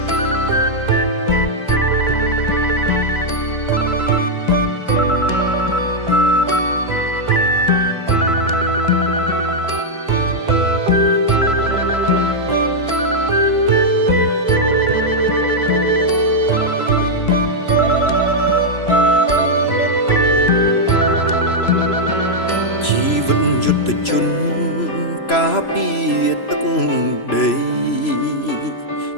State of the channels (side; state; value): right; late; 3.0 ms